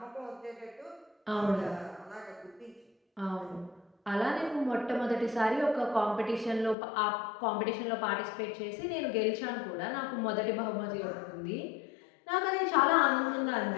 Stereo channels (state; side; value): drops out; right; at 6.8 s